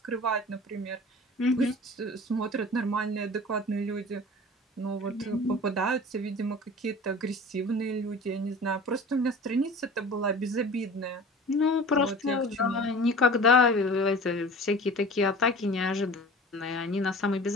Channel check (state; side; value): normal; both; correlation 0.41